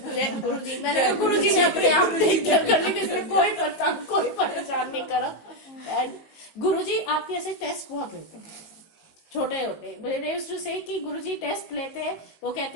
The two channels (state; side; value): late; right; 18 ms